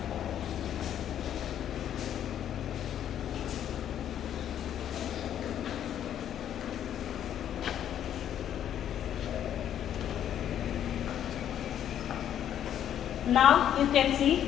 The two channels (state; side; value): quieter; right; 10.2 dB